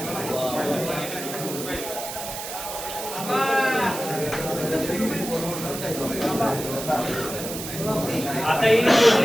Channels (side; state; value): right; noise; hiss, 8 dB below the sound